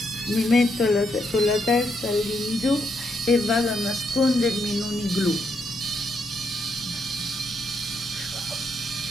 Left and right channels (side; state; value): both; normal; correlation 0.77